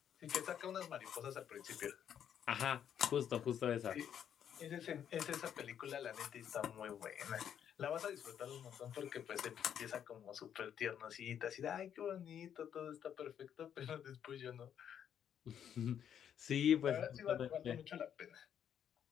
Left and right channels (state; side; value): quieter; right; 9.1 dB